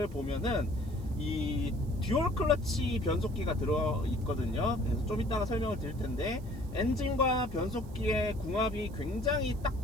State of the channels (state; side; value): noise; right; hiss, 26 dB below the sound